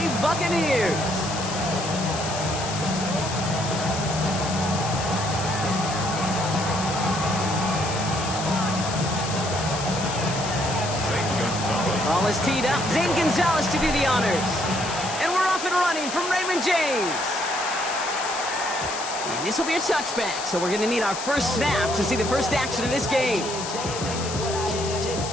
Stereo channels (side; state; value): left; noise; hiss, 8 dB below the sound